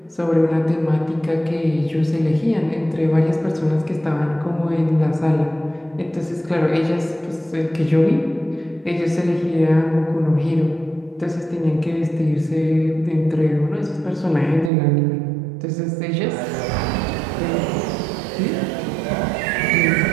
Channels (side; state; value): left; drops out; at 14.7 s